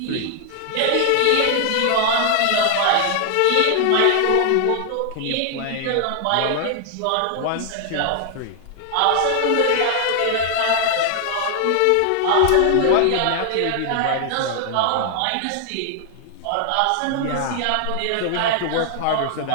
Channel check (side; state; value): both; different; correlation 0.00